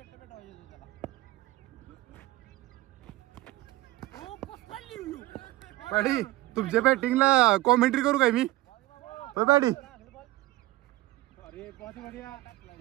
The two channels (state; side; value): quieter; left; 18.0 dB